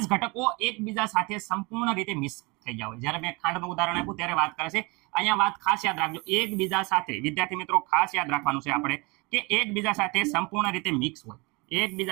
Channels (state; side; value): quieter; left; 27.0 dB